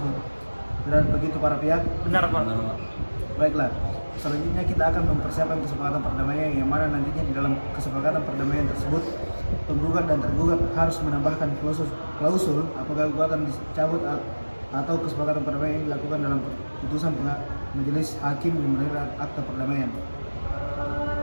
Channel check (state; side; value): inverted; both; correlation -1.00